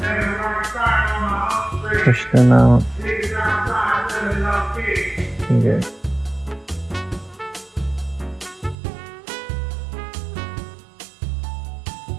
push them out. Okay.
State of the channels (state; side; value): drops out; left; at 8.8 s